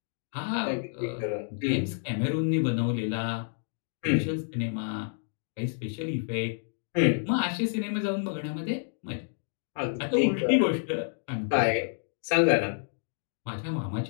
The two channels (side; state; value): right; silent; digital silence